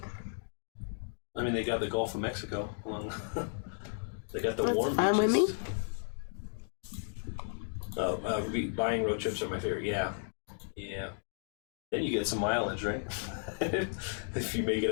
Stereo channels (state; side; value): silent; right; digital silence